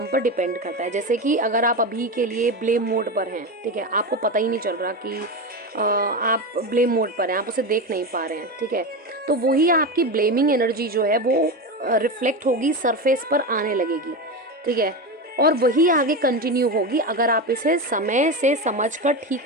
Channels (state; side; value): normal; both; correlation 0.19